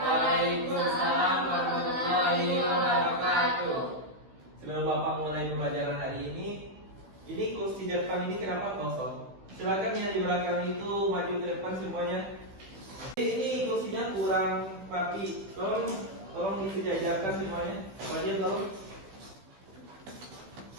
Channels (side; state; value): left; late; 16 ms